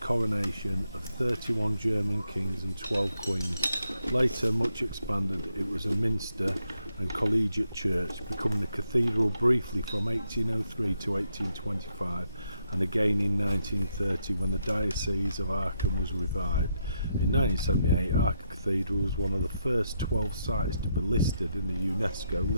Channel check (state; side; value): inverted; both; correlation -0.79